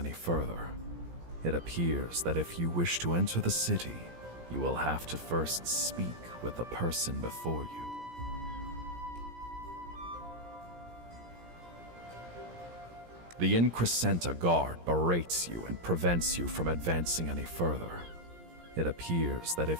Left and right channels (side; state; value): left; late; 17 ms